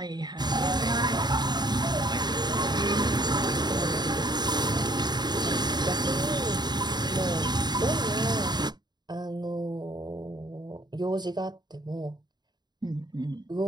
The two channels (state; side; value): late; left; 0.20 ms